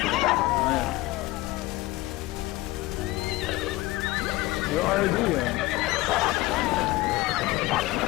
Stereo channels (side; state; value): right; quieter; 19.2 dB